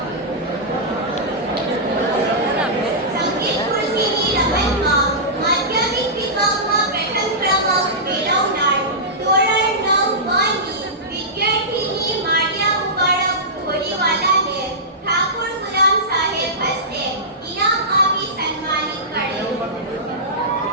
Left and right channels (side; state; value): both; normal; correlation -0.15